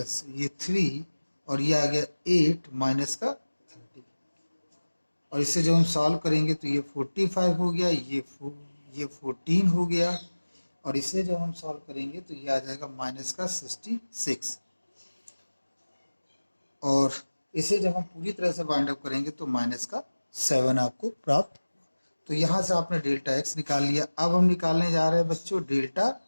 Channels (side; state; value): both; inverted; correlation -1.00